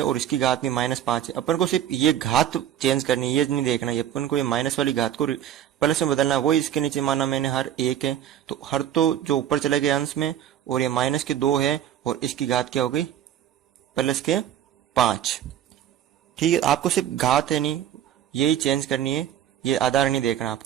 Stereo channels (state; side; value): quieter; left; 10.4 dB